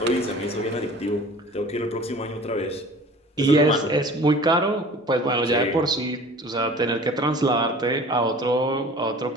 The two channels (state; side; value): normal; both; correlation 0.44